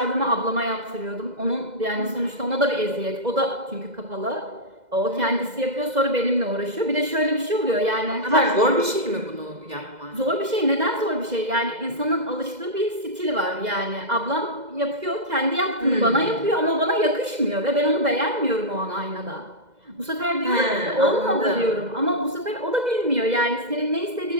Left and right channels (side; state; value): left; late; 2.0 ms